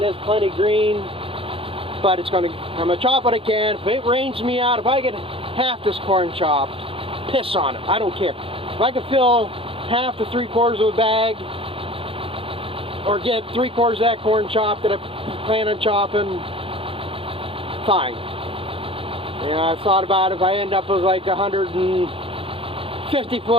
is plenty green. But I'm gonna chop what I can. If it rains me out, if I get half this corn chopped, piss on it. I don't care. If I can fill half to 3/4 of a bag, or get 3/4 of that corn chopped that I plan on chopping, fine. You know, I've thought about if I end up with like 150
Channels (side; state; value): left; late; 0.27 ms